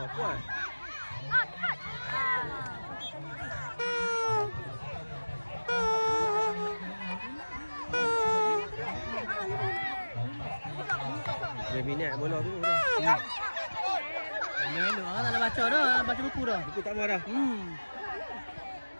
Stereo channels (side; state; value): both; inverted; correlation -1.00